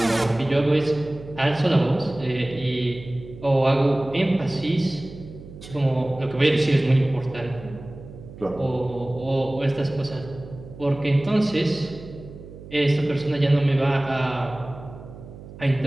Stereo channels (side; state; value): right; noise; hum, 16 dB below the sound